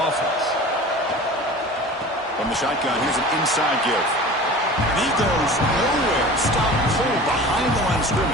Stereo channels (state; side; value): normal; both; correlation 0.38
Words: From the shotgun, here's an inside give. And he goes nowhere. Stop cold behind the line of